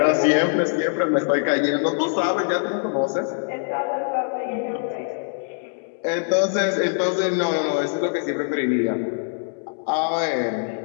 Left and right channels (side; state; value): right; silent; 63 dB below the other